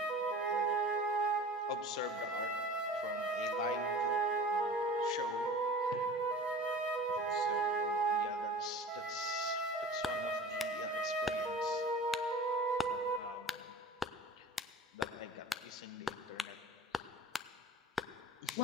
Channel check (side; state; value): both; normal; correlation 0.40